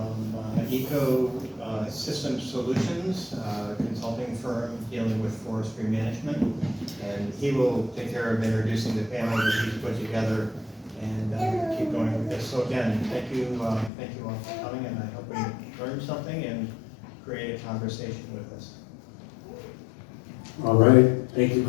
Ecosystem Solutions, consulting firm dealing with forestry management. And he will take care of introducing the panel that he's put together and keep going with this. So again, thank you all for coming, and I hope we learned something and create a conversation with us. All right, thank you,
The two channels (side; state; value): right; drops out; at 13.9 s